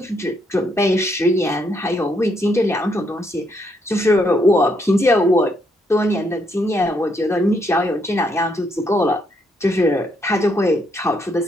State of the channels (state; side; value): normal; both; correlation 0.75